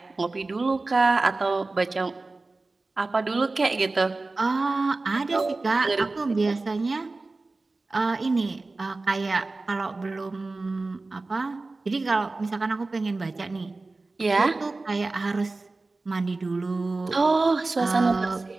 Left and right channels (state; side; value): quieter; left; 3.4 dB